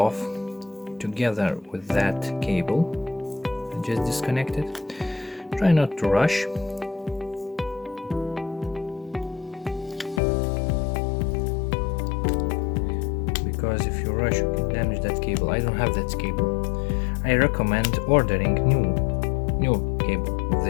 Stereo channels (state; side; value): drops out; right; at 10.2 s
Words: together with that cable. I just disconnect it. Try not to rush. Because if you rush, you can damage that cable. I don't have that cable. I recommend ordering new cable with